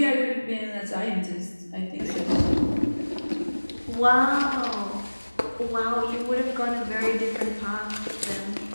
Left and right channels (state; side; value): inverted; both; correlation -1.00